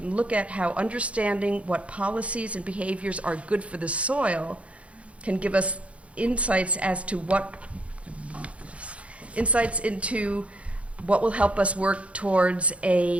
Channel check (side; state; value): left; late; 0.063 ms